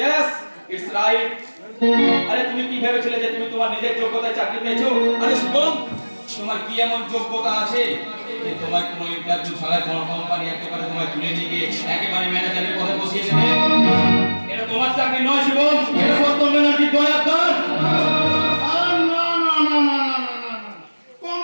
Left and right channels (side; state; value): both; inverted; correlation -1.00